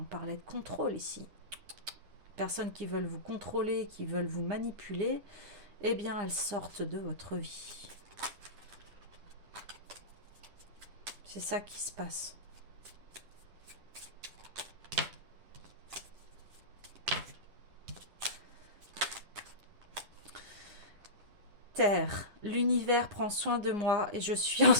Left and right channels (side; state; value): left; late; 10 ms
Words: parlait de contrôle ici. Personnes qui veulent vous contrôler, qui veulent vous manipuler, eh bien elles sortent de votre vie. C'est ça qui se passe. Terre, l'univers prend soin de moi et je suis en